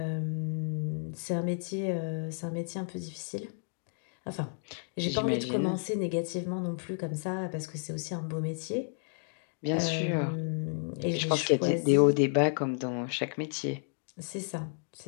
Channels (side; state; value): right; silent; digital silence